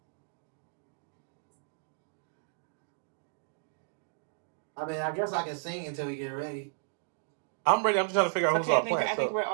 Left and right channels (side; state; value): left; silent; digital silence